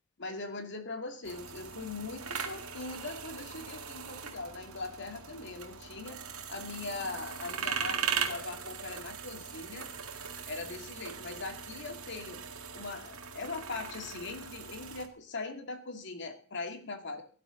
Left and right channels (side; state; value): both; normal; correlation -0.16